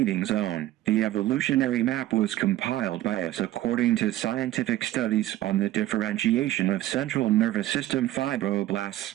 zone. The evolutionary map was compiled by us according to scientific studies on the differentiation of central nervous system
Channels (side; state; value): left; quieter; 14.6 dB